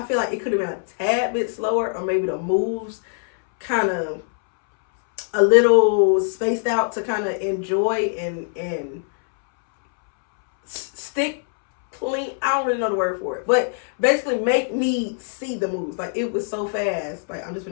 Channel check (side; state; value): right; silent; 64 dB below the other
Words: feel like it could have been a tad bit slower, or maybe the moves kind of a little spaced out to kind of enjoy and stick clean. I don't really know the word for it, but basically make me see the moves. Like, it was so fast. Like, I'm just